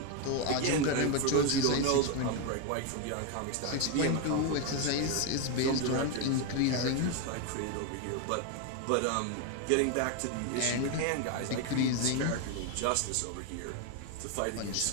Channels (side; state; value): both; different; correlation 0.01